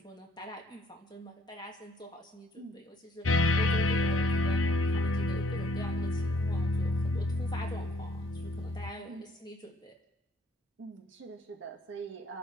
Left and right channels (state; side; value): normal; both; correlation 0.63